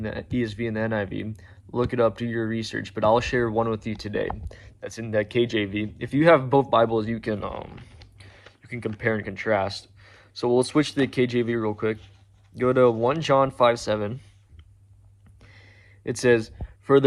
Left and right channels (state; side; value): identical; both; correlation 1.00